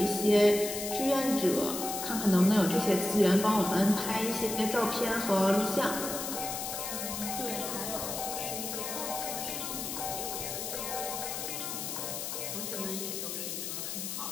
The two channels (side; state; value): left; noise; hiss, 5 dB below the sound